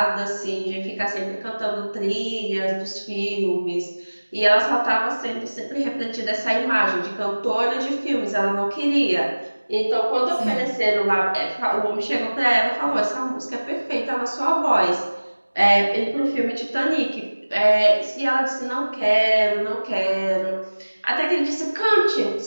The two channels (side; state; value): both; inverted; correlation -1.00